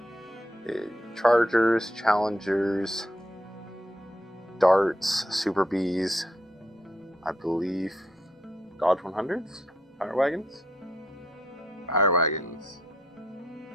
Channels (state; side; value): normal; both; correlation 0.75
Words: Chargers, Challengers, Darts, Super Bees, I believe Dodge 100s, Fire Wagons.